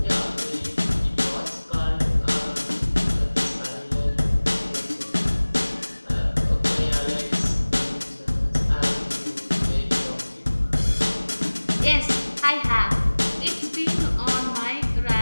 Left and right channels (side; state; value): both; inverted; correlation -1.00